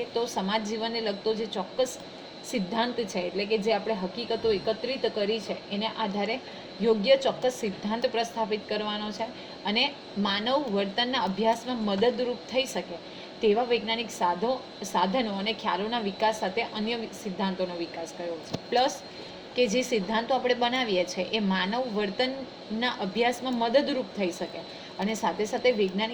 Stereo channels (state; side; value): identical; both; correlation 1.00